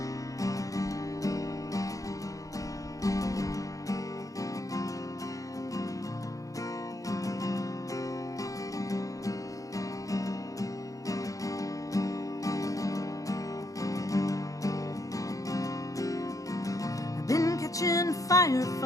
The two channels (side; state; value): right; late; 0.16 ms